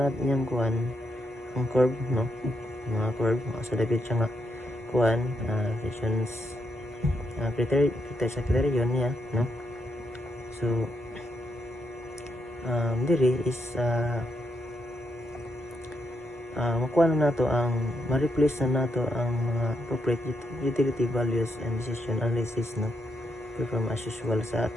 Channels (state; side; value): normal; both; correlation 0.80